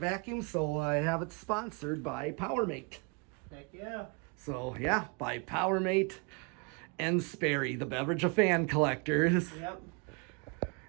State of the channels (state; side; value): quieter; left; 32.6 dB